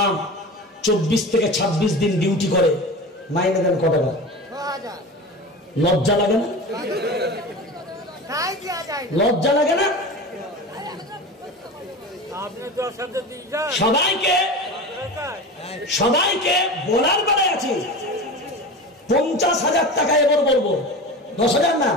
24 থেকে 26 দিন ডিউটি করে, মাইনে দেন কত টাকা? লজ্জা লাগে না? লজ্জা লাগে না? সবাইকে বলার বেলায় আছে 50,000 টাকা এবার বলবো, 10,000 না।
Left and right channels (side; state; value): both; normal; correlation 0.30